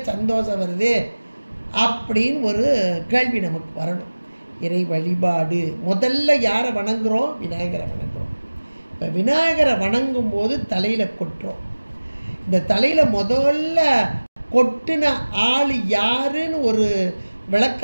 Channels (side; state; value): both; inverted; correlation -1.00